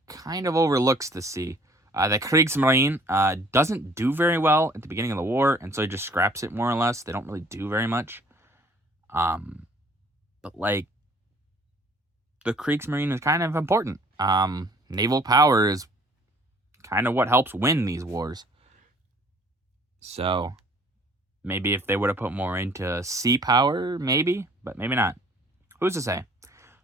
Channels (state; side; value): normal; both; correlation 0.56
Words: kind of overlooks the sea. The Kriegsmarine doesn't do very well at the beginning of the war, and so he just scraps it more or less. They don't really do very much. But like, the Kriegsmarine is kind of important. Naval power is kind of what helps win these wars. So maybe if they would have put more into sea power, maybe, but maybe not. Who's to say?